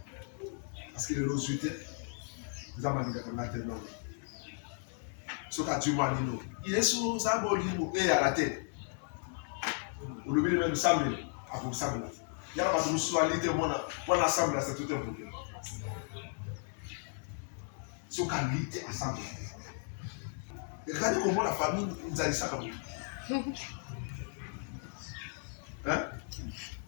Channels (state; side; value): silent; right; 54 dB below the other